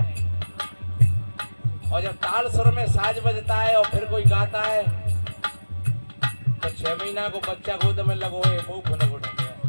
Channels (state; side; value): inverted; both; correlation -1.00